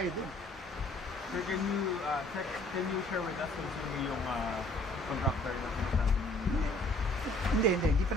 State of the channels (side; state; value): both; normal; correlation 0.58